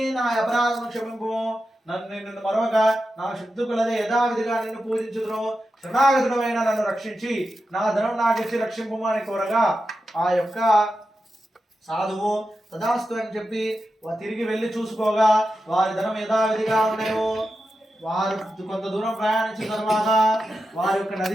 నా అపరాధం క్షమింపు, నిన్ను మరొక నా శక్తి కొలదే యథావిధిగా నిన్ను పూజించుదును, శరణాగతుడమైన నన్ను రక్షించి నా ధనం నాకిచ్చి రక్షింపు అని కోరగా ఆ యొక్క సాధువు తదాస్తు అని చెప్పి తిరిగి వెళ్ళి చూసుకోగా వారి ధనం యథావిధిగా ఉన్నాయో. వారు కొంత దూరం ప్రయాణించిన తర్వాత వారి యొక్క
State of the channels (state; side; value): normal; both; correlation 0.90